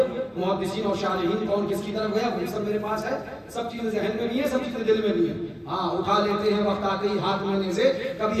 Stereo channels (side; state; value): both; identical; correlation 1.00